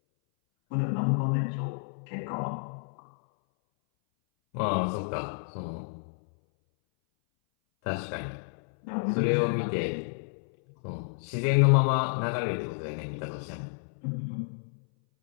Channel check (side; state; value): right; silent; 58 dB below the other